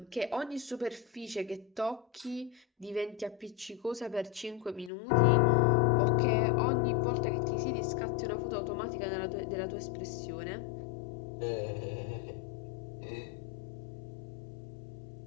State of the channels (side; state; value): right; drops out; at 4.9 s